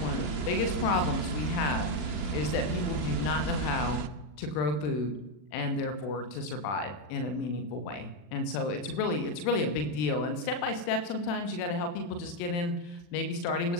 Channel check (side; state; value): right; late; 40 ms